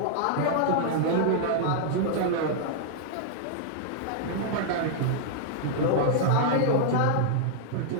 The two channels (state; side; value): different; both; correlation -0.01